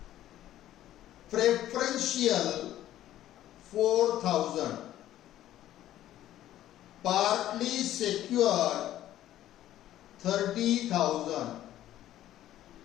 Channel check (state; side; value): quieter; right; 13.1 dB